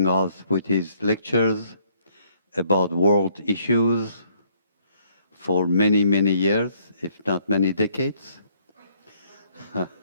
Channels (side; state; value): both; inverted; correlation -0.66